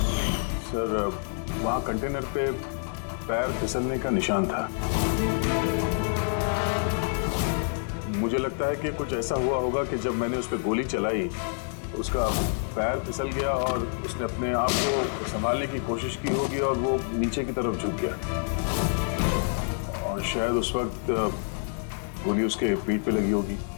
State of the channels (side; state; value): right; silent; digital silence